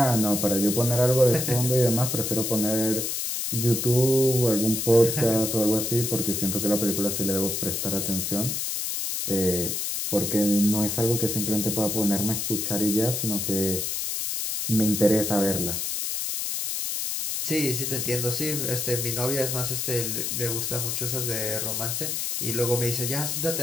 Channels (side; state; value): left; noise; hiss, 2 dB below the sound